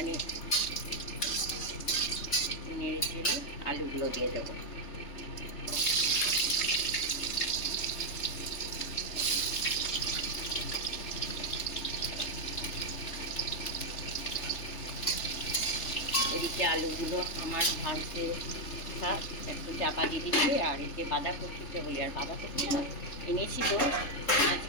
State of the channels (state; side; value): late; right; 3.3 ms